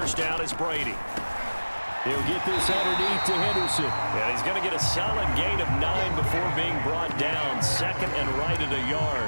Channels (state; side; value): inverted; both; correlation -1.00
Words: down is Brady. He'll get this underneath to Henderson. And he's going to get a solid gain of 9 before being brought down. 2nd and right at a